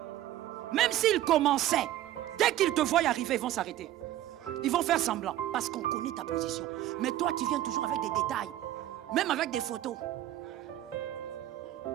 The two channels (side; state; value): left; quieter; 13.5 dB